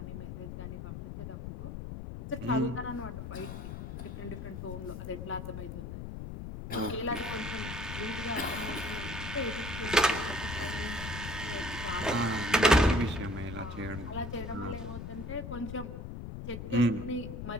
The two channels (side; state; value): left; noise; rumble, 7 dB below the sound